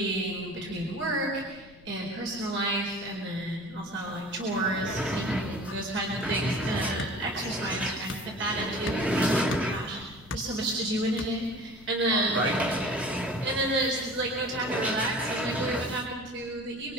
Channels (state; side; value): noise; left; rumble, 23 dB below the sound